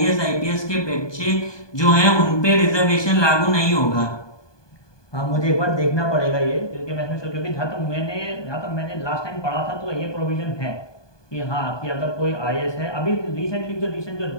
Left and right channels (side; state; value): right; late; 1.2 ms